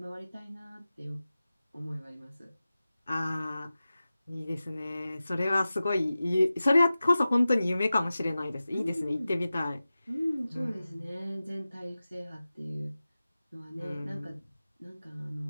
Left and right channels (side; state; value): both; inverted; correlation -0.95